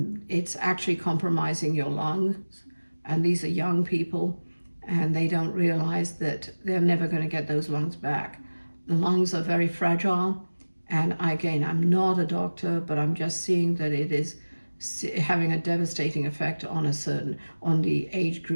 it's actually compromising your lungs. And these are young people, and they don't realize that they're never going to get those lungs back. The lungs are very fragile. And again, I'm not a doctor, but I'm just seeing that it is having a devastating effect on the age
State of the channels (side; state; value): both; inverted; correlation -1.00